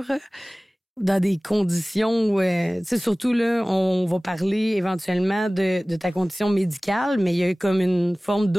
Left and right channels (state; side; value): normal; both; correlation 0.98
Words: dans des conditions où, tu sais, surtout là, on va parler éventuellement de ta condition médicale, mais il y a comme une forme